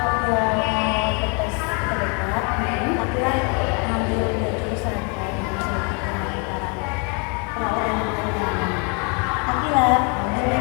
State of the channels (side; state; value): right; quieter; 34.8 dB